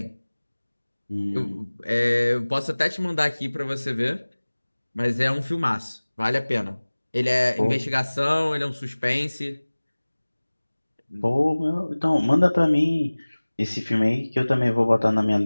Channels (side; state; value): both; inverted; correlation -1.00